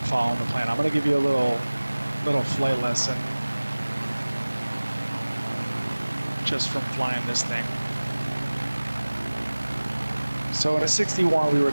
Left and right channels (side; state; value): both; inverted; correlation -1.00